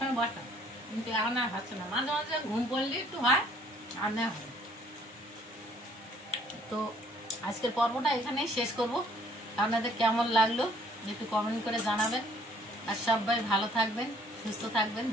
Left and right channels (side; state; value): both; normal; correlation 0.61